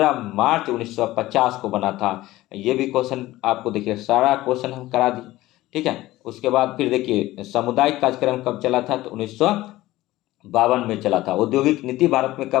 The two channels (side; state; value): right; quieter; 17.0 dB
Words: मार्च 1950 को बना था। ये भी क्वेश्चन आपको देखिए सारा क्वेश्चन हम करा दिए, ठीक है। उसके बाद फिर देखिए सामुदायिक कार्यक्रम कब चला था तो 1952 में चला था। औद्योगिक नीति भारत में